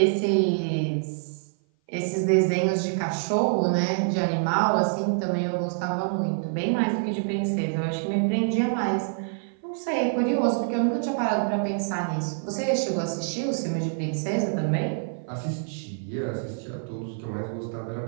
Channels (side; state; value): left; silent; 56 dB below the other